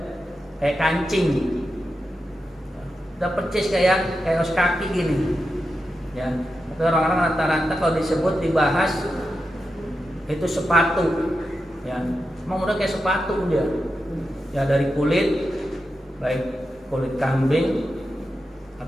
kayak kancing, udah persis kayak kaos kaki gini, ya. Tapi orang-orang rata-rata kalau disebut dibahas itu sepatu, ya. Emang udah kayak sepatu dia, ya, dari kulit, baik kulit kambing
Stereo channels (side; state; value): both; normal; correlation 0.89